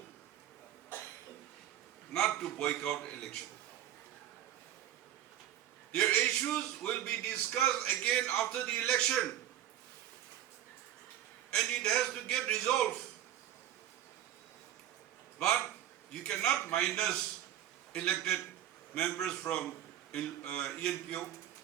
not to boycott election. Their issues will be discussed again after the election, and it has to get resolved. But you cannot minus elected members from ENPO.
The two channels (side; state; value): left; quieter; 11.6 dB